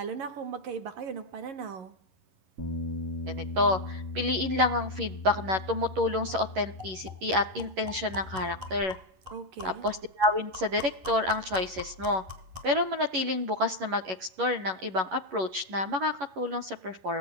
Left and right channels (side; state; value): left; late; 11 ms